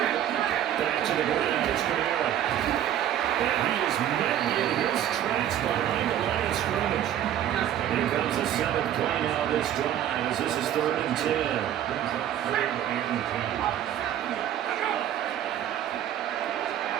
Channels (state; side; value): quieter; left; 11.0 dB